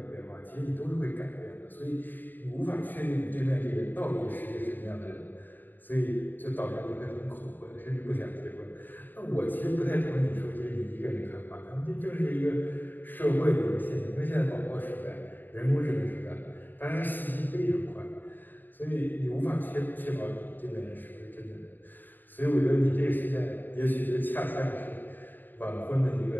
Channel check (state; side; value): late; right; 0.090 ms